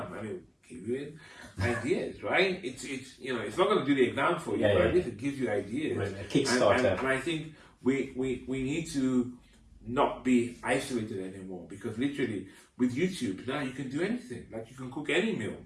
I mean, give you ideas, right? It's you know, it's not going to do the exam for you, but at least it gives you ideas. Right, a Kickstarter. And I think we need to not be isolated anymore, because literally with YouTube now you can do anything. Like you can cook any meal.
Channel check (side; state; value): both; identical; correlation 1.00